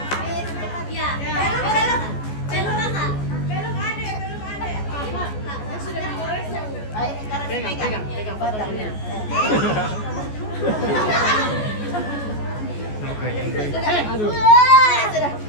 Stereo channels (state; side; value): late; right; 14 ms